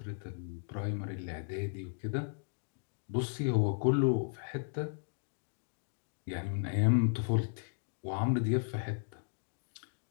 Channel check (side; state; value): right; silent; digital silence